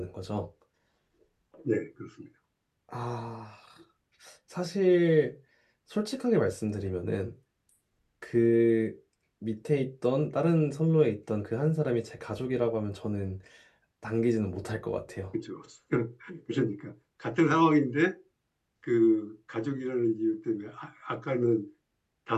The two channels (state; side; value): identical; both; correlation 1.00